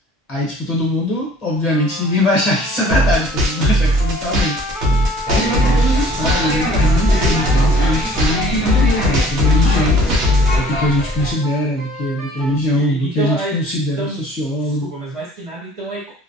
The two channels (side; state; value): both; normal; correlation 0.52